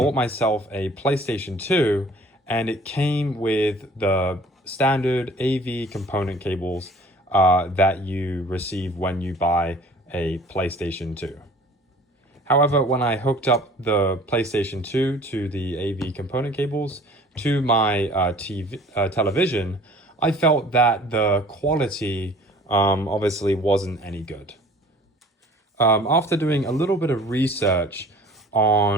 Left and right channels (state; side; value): normal; both; correlation 0.49